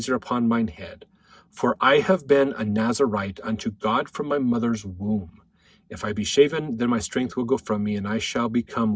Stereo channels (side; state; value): both; identical; correlation 1.00